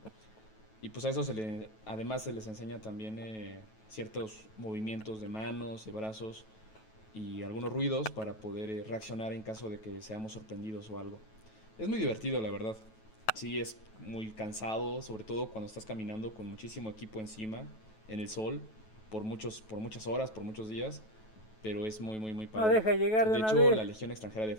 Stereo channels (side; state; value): right; late; 9.2 ms